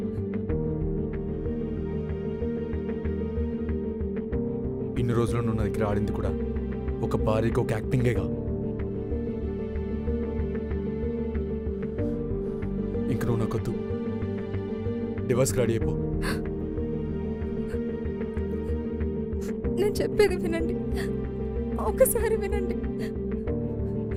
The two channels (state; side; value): identical; both; correlation 1.00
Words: ఇన్ని రోజులు నువ్వు నా దగ్గర ఆడింది కూడా ఒక భార్యకి ఒక యాక్టింగేగా. ఇంక నువ్వు నాకొద్దు, డివోర్స్కి రెడీ అయిపో. నేను చెప్పేది వినండి, ఒకసారి వినండి.